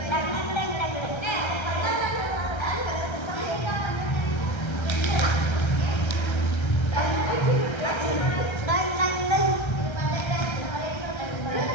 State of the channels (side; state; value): right; late; 1.3 ms